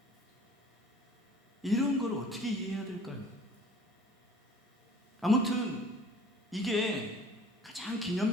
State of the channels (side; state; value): both; normal; correlation 0.49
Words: 이런 걸 어떻게 이해해야 될까요? 아무튼 이게 가장